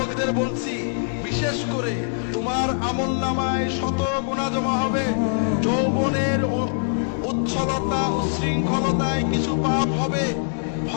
বলছি, বিশেষ করে তোমার আমলনামায় শত গুনাহ জমা হবে। যৌবনের উচ্ছলতা উচ্ছৃঙ্খলতায় কিছু পাপ হবে,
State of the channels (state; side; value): silent; right; 63 dB below the other